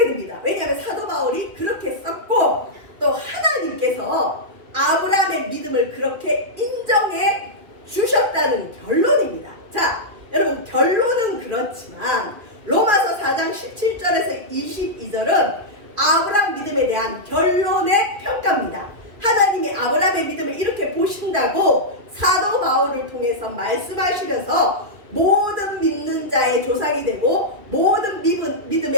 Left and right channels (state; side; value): late; left; 2.6 ms